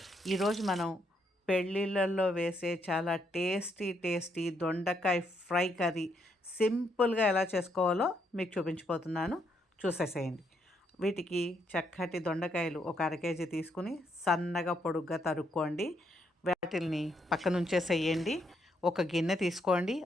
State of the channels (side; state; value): both; normal; correlation 0.76